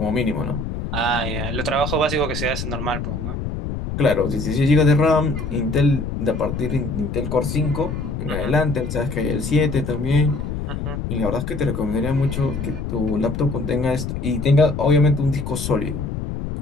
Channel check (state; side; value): noise; left; rumble, 5 dB below the sound